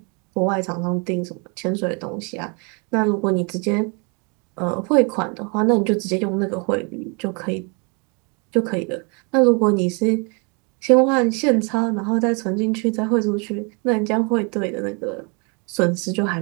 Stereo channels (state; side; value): quieter; left; 34.0 dB